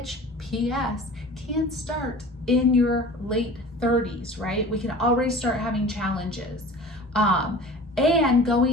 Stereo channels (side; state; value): both; normal; correlation 0.41